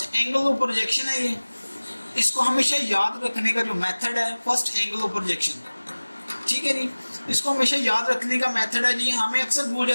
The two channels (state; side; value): inverted; both; correlation -1.00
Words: एंगल ऑफ प्रोजेक्शन है ये, इसको हमेशा याद रखने का जो मेथड है फर्स्ट एंगल ऑफ प्रोजेक्शन, ठीक है जी, इसको हमेशा याद रखने का मेथड है जी। हमें अक्सर भूल